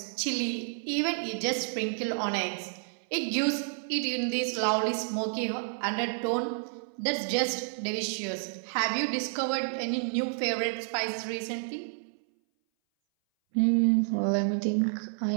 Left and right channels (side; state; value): left; silent; 58 dB below the other